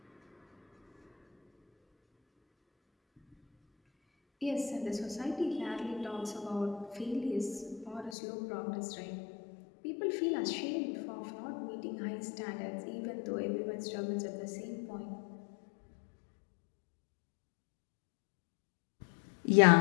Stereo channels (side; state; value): right; drops out; at 8.2 s